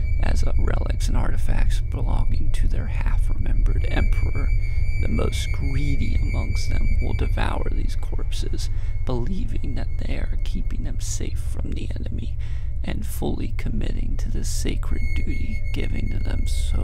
as relics and artifacts belonging to their half-remembered emperor. The most greedy amongst them will devour these corpses, believing that they are keeping them safe from the enemy, and fully committing to the sacred duty given to them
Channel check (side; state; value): both; identical; correlation 1.00